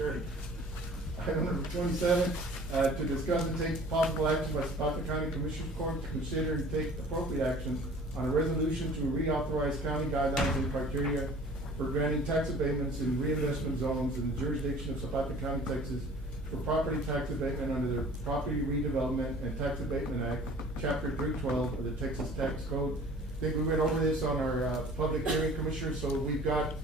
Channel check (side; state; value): both; normal; correlation 0.48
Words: Item number 27, to discuss and take possible action by Zapata County Commissioners Court to consider and take appropriate action on a resolution to reauthorize county guidelines and criteria for granting tax abatements in reinvestment zones in the jurisdiction of Zapata County, Texas, for property tax abatement under the Property Redevelopment and Tax Abatement Act, Chapter 312 of the Texas Tax Code. I think we went over this on our public hearing, Commissioner, so we've got